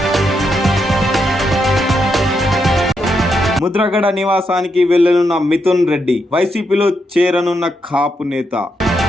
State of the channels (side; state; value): both; normal; correlation 0.81